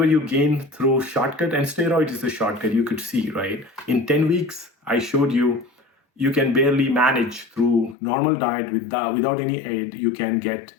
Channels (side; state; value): right; drops out; at 8.0 s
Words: you gain through shortcut, and steroid is a shortcut, you could see, right? In 10 weeks, I showed you, you can barely manage through normal diet without any aid. You can get